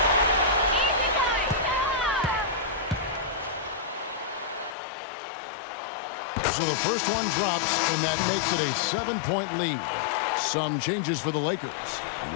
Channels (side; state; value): right; drops out; at 4.8 s